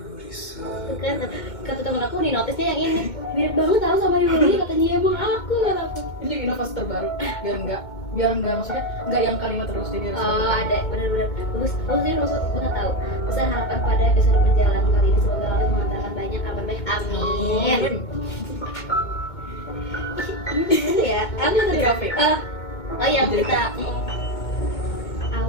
Itu kan kata temen aku di notisnya yang ini mirip banget tau sama Yuli, katanya emang aku kata aku. Ini juga inovasi terbaru biar enggak maksudnya enggak yang kalimat terus jadi ada benar-benar bagus sih maksud nggak tahu. Besar harapan pada episode perjalanan kali ini, semoga Allah mengantarkan banyak kabar baik, amin. Ini ya apa tadi? Oh yang kita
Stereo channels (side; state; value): right; late; 2.2 ms